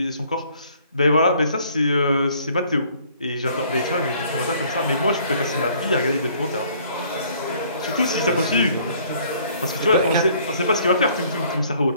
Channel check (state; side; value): inverted; both; correlation -0.59